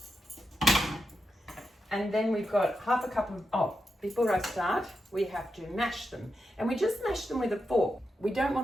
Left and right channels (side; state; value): both; normal; correlation 0.87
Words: And then we've got half a cup of, before I start, we have to mash them. And we just mash them with a fork. We don't